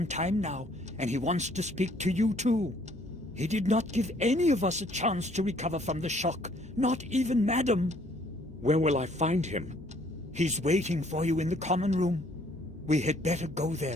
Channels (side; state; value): both; normal; correlation 0.62